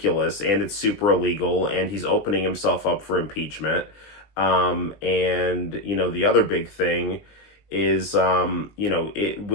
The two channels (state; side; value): late; right; 20 ms